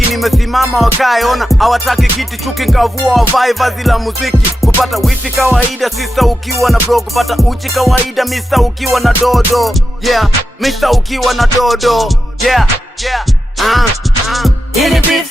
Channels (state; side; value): normal; both; correlation 0.90